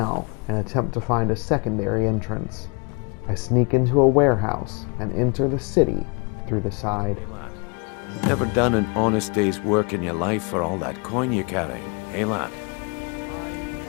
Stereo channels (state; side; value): quieter; right; 32.8 dB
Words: and attempt to find a secondary entrance. I sneak into a warehouse and enter the city through the side. Never done an honest day's work in your life for all that coin you're carrying, hey lad?